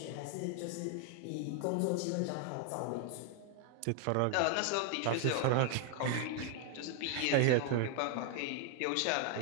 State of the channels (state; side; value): different; both; correlation 0.00